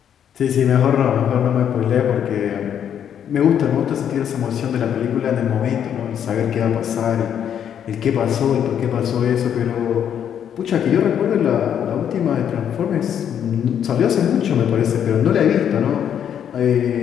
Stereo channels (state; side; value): quieter; right; 9.0 dB